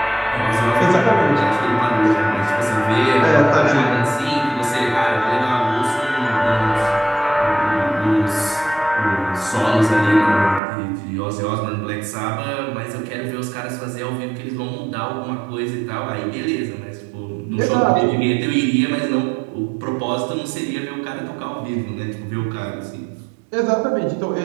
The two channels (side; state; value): left; drops out; at 10.6 s